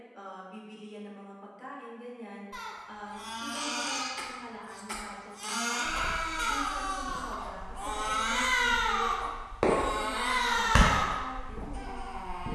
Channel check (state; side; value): identical; both; correlation 1.00